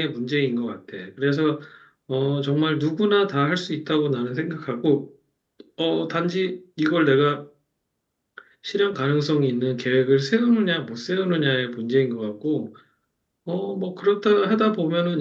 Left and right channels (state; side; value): identical; both; correlation 1.00